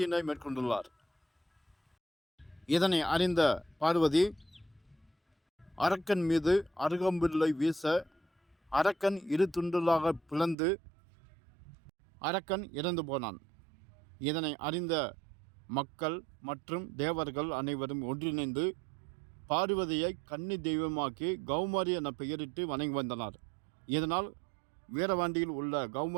மேற்கொண்டுள்ளார். இதனை அறிந்த பார்வதி அரக்கன் மீது அருகம்பில்லை வீச அரக்கன் இரு துண்டுகளாக பிளந்து அரக்கன் இறந்து போனான். இதனை அறிந்த மக்கள் மற்றும் தேவர்கள் அனைவரும் ஒன்றிணைந்து பார்வதியை கன்னி தெய்வமாக்கி கௌமாரி என பெயரிட்டு வணங்கி வந்தனர். இதனால் வீரவாண்டியில் உள்ள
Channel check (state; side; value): drops out; left; at 10.6 s